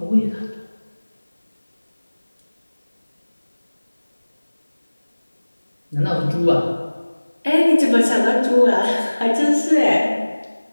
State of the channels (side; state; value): both; inverted; correlation -1.00